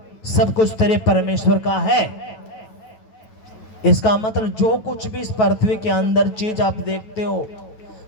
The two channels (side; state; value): right; late; 9.2 ms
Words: सब कुछ तेरे परमेश्वर का है। इसका मतलब जो कुछ भी इस पृथ्वी के अंदर चीज आप देखते हो